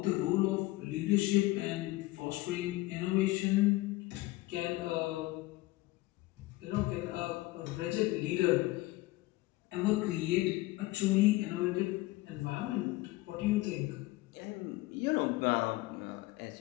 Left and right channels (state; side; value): quieter; right; 19.2 dB